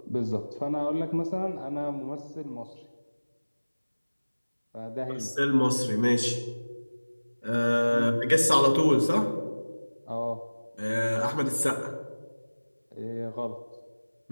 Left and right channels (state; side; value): inverted; both; correlation -1.00